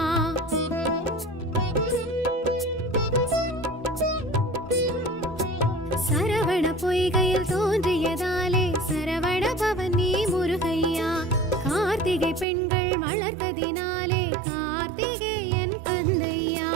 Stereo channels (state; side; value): drops out; left; at 12.5 s